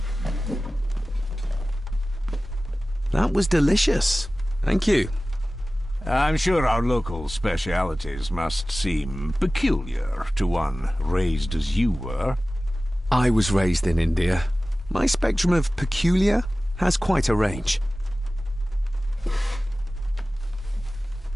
That was delicious. Thank you. I'm sure our local specialities must seem peculiar to one raised as you were. I was raised in India. My spectrum of peculiar has quite a range.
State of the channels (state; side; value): normal; both; correlation 0.97